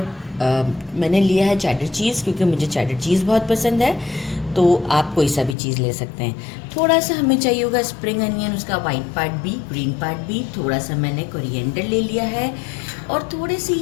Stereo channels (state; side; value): drops out; right; at 5.6 s